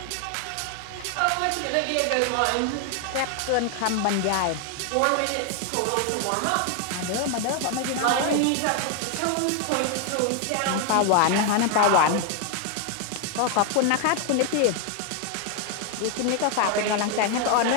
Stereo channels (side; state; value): both; different; correlation 0.00